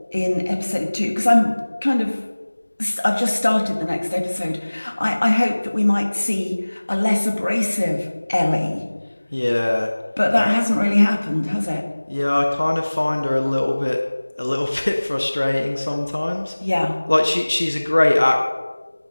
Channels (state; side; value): inverted; both; correlation -1.00